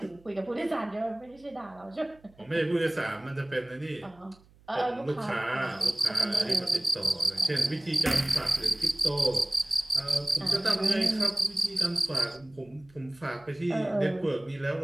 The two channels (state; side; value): noise; right; hum, 28 dB below the sound